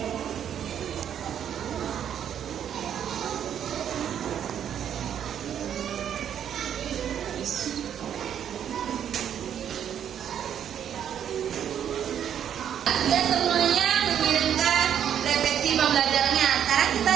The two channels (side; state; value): left; quieter; 9.3 dB